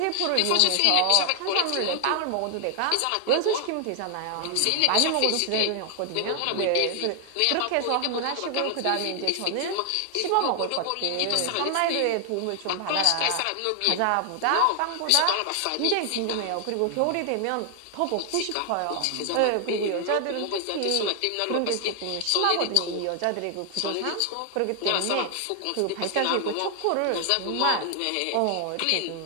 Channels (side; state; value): both; different; correlation 0.00